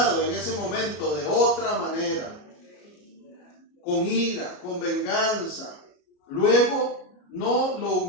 en ese momento de otra manera, con ira, con venganza, luego no le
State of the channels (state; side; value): late; right; 34 ms